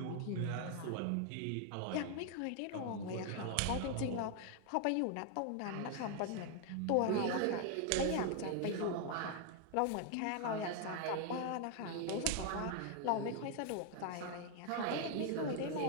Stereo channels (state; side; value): different; both; correlation 0.00